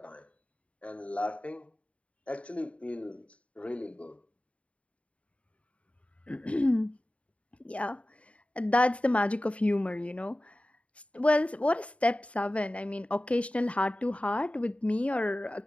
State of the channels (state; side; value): late; right; 0.064 ms